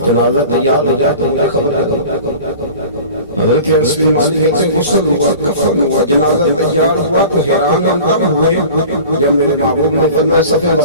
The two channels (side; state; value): both; inverted; correlation -0.40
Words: جنازہ تیار ہو جائے تو مجھے خبر کرو۔ حضرت انس بن مالک کہتے ہیں غسل ہوا، کفن ہوا، جنازہ تیار ہوا تو حیران ہم تب ہوئے جب میرے محبوب نے فرمایا صفیں